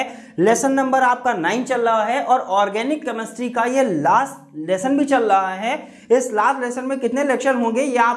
लेसन नंबर आपका 9 चल रहा है और ऑर्गेनिक केमिस्ट्री का ये लास्ट लेसन भी चल रहा है। इस लास्ट लेसन में कितने लेक्चर होंगे ये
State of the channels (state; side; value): identical; both; correlation 1.00